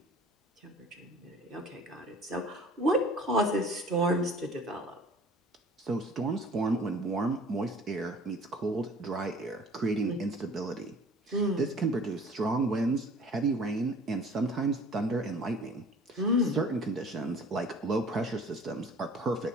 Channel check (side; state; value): both; normal; correlation 0.48